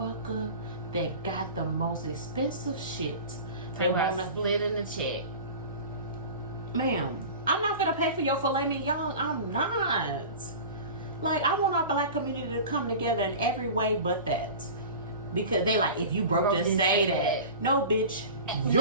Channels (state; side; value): inverted; both; correlation -0.35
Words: that got the most expensive shit. They want to split in the check. Ma'am, I'm not gonna pay for your filet mignon. I'm not. Like, I want our black community to come together in every way but that. Because they like, if you broke, just say that. No, bitch,